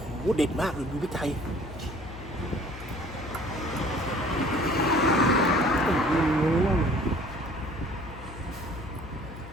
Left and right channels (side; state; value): left; noise; hum, 13 dB below the sound